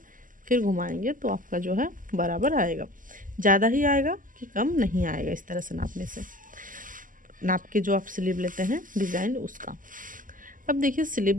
फिर घुमाएंगे तो आपका जो है बराबर आएगा। ज़्यादा ही आएगा कि कम नहीं आएगा, इस तरह से नापने से, नाप के जो आप स्लीव लेते हैं डिज़ाइन उसका। अब देखिए स्लिप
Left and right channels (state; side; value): late; left; 0.39 ms